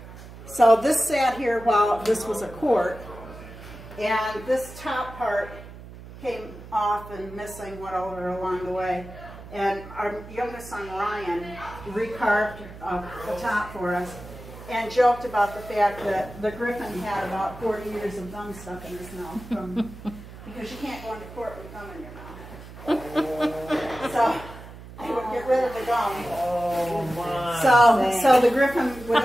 So this sat here while this was a court, and this top part came off and missing, went over along the way. And our youngest son, Ryan, recarved the top for us and joked about the fact that the griffin had about 40 years of gum stuck in his mouth, because you can't go into court with gum in your mouth. So they would get rid of the gum. Oh, my. So the griffin would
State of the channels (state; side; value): noise; right; hum, 15 dB below the sound